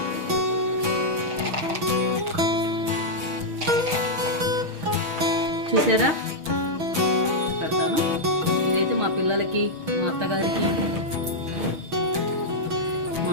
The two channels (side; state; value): left; late; 6.4 ms